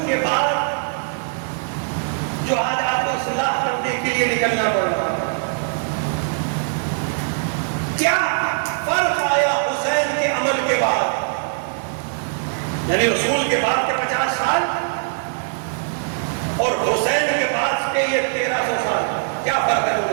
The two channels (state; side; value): silent; left; digital silence